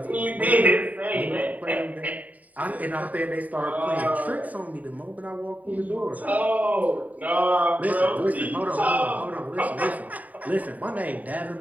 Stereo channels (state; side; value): late; left; 0.073 ms